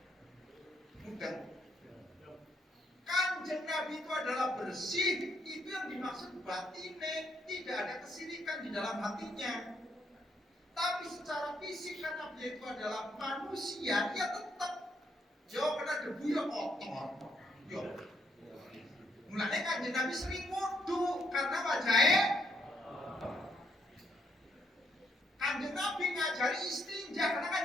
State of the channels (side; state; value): both; normal; correlation 0.73